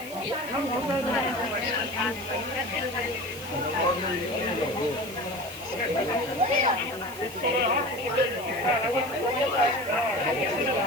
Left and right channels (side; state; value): right; noise; hiss, 15 dB below the sound